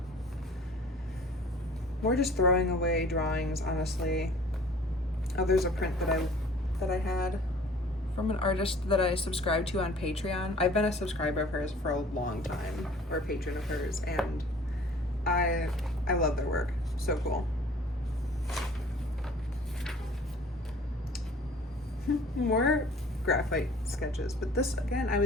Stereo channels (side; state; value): both; normal; correlation 0.50